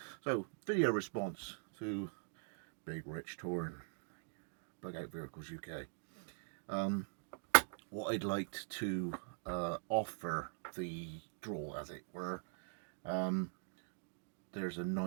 So, video response to Big Rich touring Pancake Verticals UK. What I'd like to offer the draw, as it were, there's a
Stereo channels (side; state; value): left; silent; digital silence